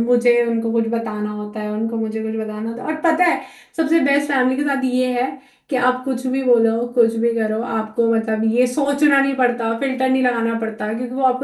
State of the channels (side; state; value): both; identical; correlation 1.00